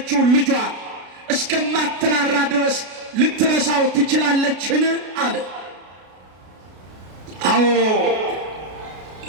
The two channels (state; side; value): late; left; 33 ms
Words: ልጇን እስከማትራራ ድረስ ልትረሳው ትችላለችን አለ። አዎ